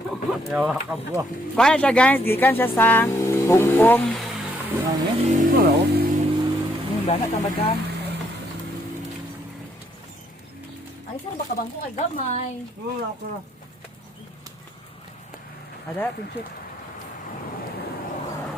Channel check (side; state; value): both; normal; correlation 0.71